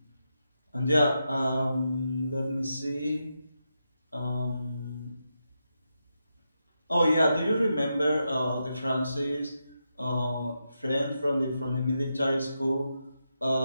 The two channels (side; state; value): both; inverted; correlation -0.86